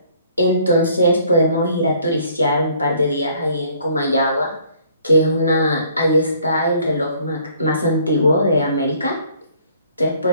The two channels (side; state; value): both; inverted; correlation -0.60